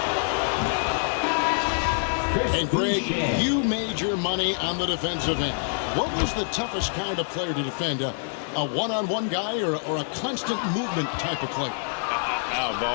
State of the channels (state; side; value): silent; right; digital silence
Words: And Greg, you made your money on the defensive end. What was the toughest kind of player to defend? A one-on-one guy or a constant movement type of player? I've